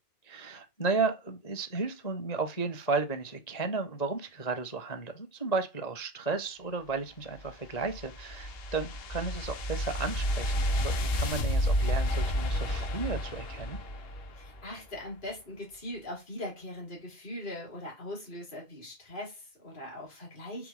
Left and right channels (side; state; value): right; late; 1.9 ms